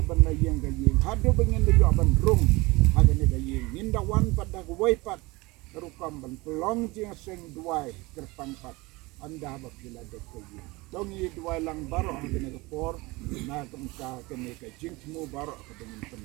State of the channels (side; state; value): left; quieter; 23.2 dB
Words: bana yang ga ying hado bengen de yo ban rum hagane ga ying ninda wan pada way pat terukam ban pelong jing seng duai terpangpat anda ba pila de ko ying dong yi duai lang baro hagane ga por na kamka kene ka jing temu baro ka dengan